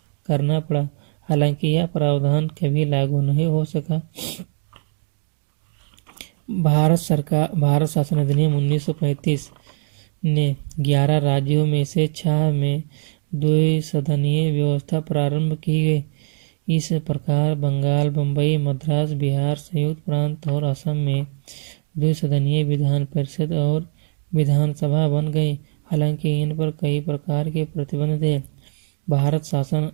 करना पड़ा। हालांकि यह प्रावधान कभी लागू नहीं हो सका। भारत शासन अधिनियम 1935 ने 11 राज्यों में से 6 में द्विसदनीय व्यवस्था प्रारंभ की गई। इस प्रकार बंगाल, बम्बई, मद्रास, बिहार, संयुक्त प्रांत और असम में द्विसदनीय विधान परिषद और विधानसभा बन गई। हालांकि इन पर कई प्रकार के प्रतिबंध थे। भारत शासन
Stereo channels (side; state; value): left; silent; digital silence